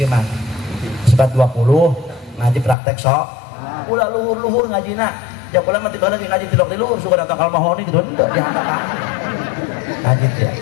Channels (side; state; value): right; drops out; at 2.8 s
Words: mah. Sebat 20 ngaji praktek sok. Ulah luhur-luhur ngajina. Ya pula mati bala ngaji tilok di luhur suka datang kal mahoni gitu henteu dihandap ngaji teh